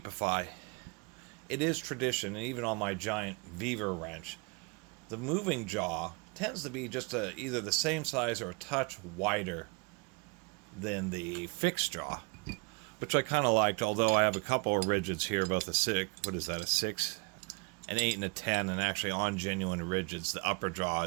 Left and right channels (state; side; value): quieter; left; 30.4 dB